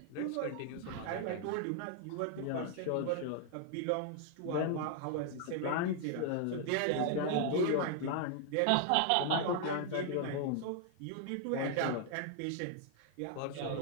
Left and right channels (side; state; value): both; different; correlation 0.00